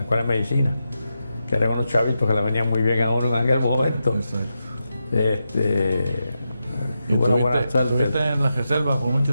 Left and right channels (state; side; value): inverted; both; correlation -0.88